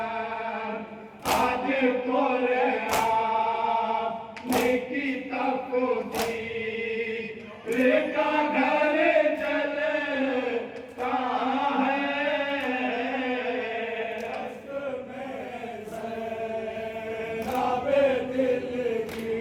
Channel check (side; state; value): both; identical; correlation 1.00